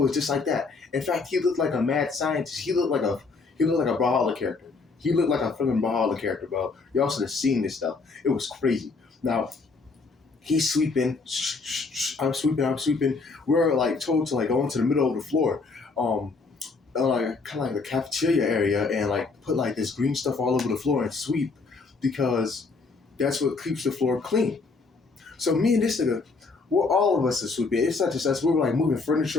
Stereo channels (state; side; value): quieter; right; 4.2 dB